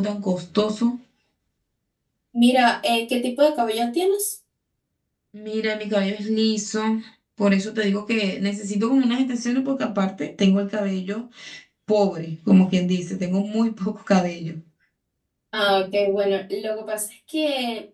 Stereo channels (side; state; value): both; identical; correlation 1.00